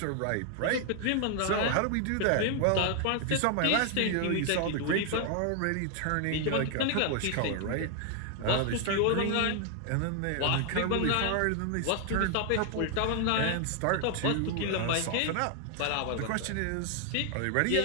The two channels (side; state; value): both; different; correlation 0.00